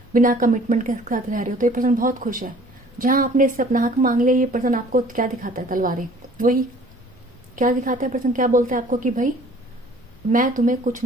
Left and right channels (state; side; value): normal; both; correlation 0.53